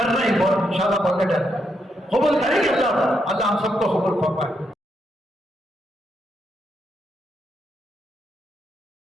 نہیں بہت انشاءاللہ بہت ڈر قبول کریں گے. اللہ ہم سب کو قبول فرمائے.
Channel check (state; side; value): normal; both; correlation 0.80